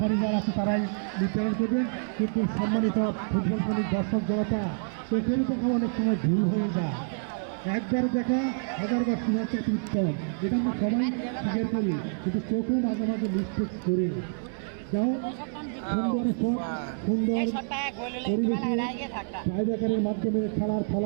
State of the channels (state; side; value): silent; left; 60 dB below the other